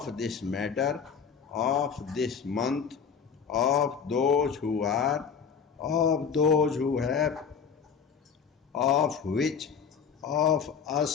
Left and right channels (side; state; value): right; quieter; 6.6 dB